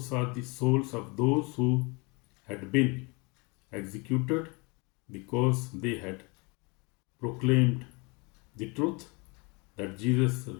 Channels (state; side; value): quieter; right; 29.5 dB